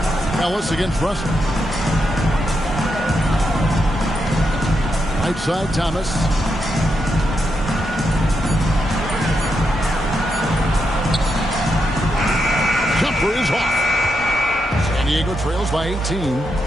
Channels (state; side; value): normal; both; correlation 0.83